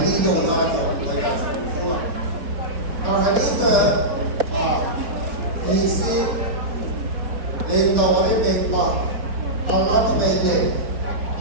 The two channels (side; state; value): left; late; 4.6 ms